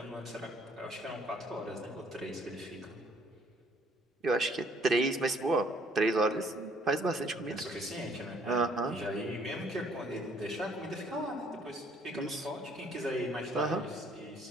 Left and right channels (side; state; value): both; normal; correlation 0.62